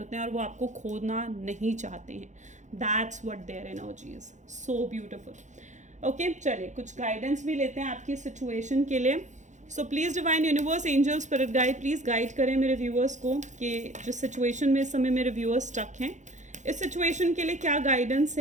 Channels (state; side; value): late; left; 0.35 ms